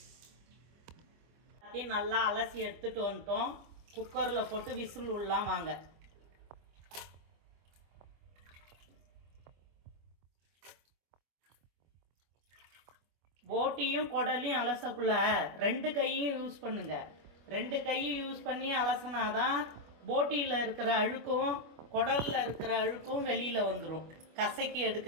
நல்லா அலசி எடுத்துட்டு வந்துட்டோம். குக்கரில் போட்டு விசில் உள்ளலாம் வாங்க. போட்டியும் குடலையும் அலசக்குள்ள 2 கையும் யூஸ் பண்ணுங்க. 2 கையும் யூஸ் பண்ணி அலசினாதான் போட்டியில் இருக்கிற அழுக்கும் குடலில் இருக்கிற அழுக்கும் வெளியில் வந்துடும் கசக்கி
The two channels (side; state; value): left; late; 25 ms